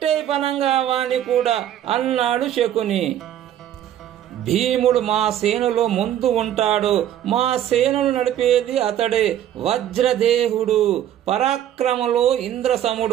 పనంగా వాణ్ణి కూడా అన్నాడు శకుని. భీముడు మా సేనలో ముందు ఉంటాడు, మా సేనను నడిపేది అతడే, వజ్రదేహుడు, పరాక్రమలో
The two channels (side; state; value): left; quieter; 11.2 dB